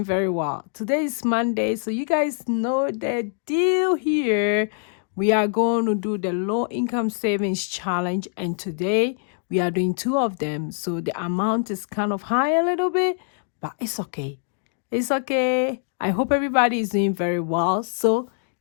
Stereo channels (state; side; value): silent; right; digital silence